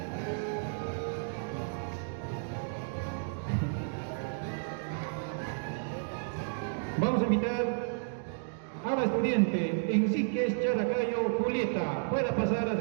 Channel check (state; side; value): silent; left; digital silence